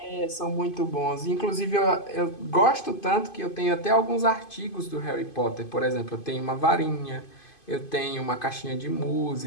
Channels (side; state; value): right; late; 2.5 ms